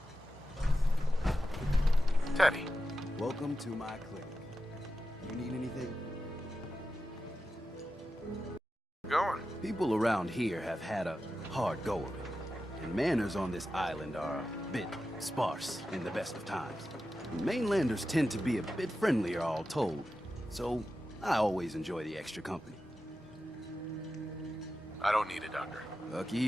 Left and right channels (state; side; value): normal; both; correlation 0.91